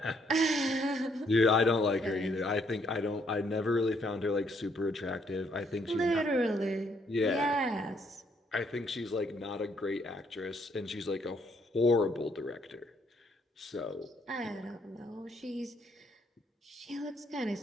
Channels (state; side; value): normal; both; correlation 0.70